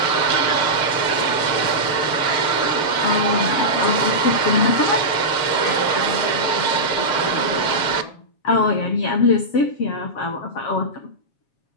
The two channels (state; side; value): late; right; 7.3 ms